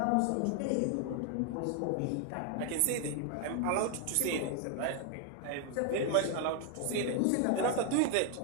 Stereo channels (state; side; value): different; both; correlation 0.00